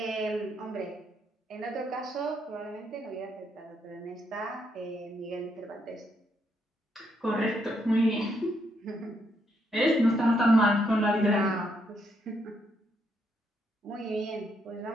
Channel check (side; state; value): both; normal; correlation 0.76